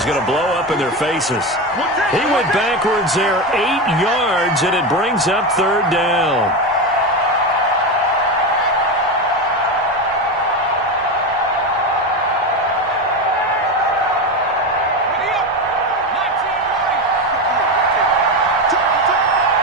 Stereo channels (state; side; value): normal; both; correlation 0.17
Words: going to blow up in their faces. He went backwards there 8 yards, and it brings up third down.